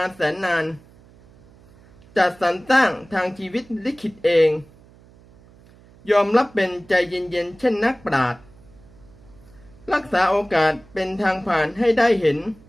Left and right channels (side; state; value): right; noise; hum, 26 dB below the sound